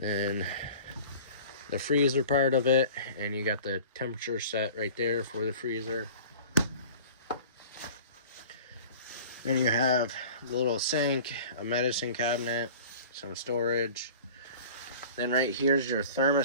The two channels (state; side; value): inverted; both; correlation -0.43